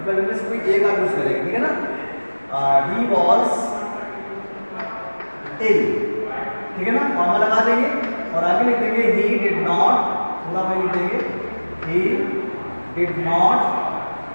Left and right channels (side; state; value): both; inverted; correlation -1.00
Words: इनमें से कोई एक आप यूज करेंगे, ठीक है ना। ही वॉज इल, ठीक है ना, फॉर्मूला लगा देंगे और आगे लिख देंगे ही डिड नॉट, पूरा में लिख देंगे he did not